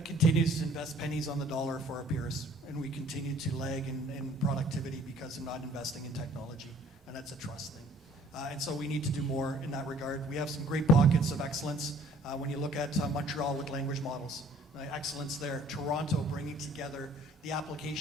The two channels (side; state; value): both; normal; correlation 0.56